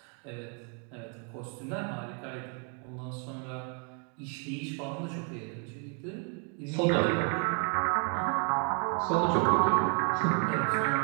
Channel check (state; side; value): quieter; left; 39.4 dB